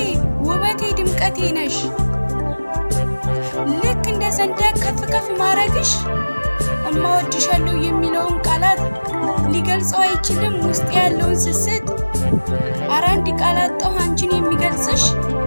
ውበቴ ድምቀቴ ነሽ ልክ እንደ ሰንደቅ ከፍ ከፍ ማረግሽ እማወድሻለሁ የሚለውን ቃላት ሊገልጸው አይችልም ውስጥ ያለውን ስስት አራንዲ ቃላት ጠው አንቺን የሚገልጽሽ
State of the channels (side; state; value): both; inverted; correlation -1.00